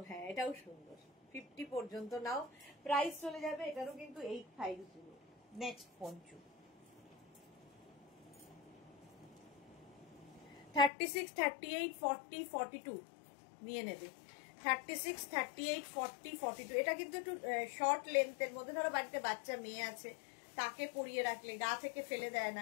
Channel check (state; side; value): drops out; right; at 10.9 s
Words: হ্যাঁ, এটাও সুন্দর। 50 পর্যন্ত নাও, প্রাইস চলে যাবে এটারও কিন্তু 850। নেক্সট পঞ্চু 36, 38, 40, 42 নিয়ে নেবে। 36, 38, 40, 42 এটা কিন্তু একটু শর্ট লেন্থের মধ্যে। ধরো বাড়িতে বাচ্চা মেয়ে আছে, তাকে পরিয়ে রাখলে গা থেকে ফেলে দেয়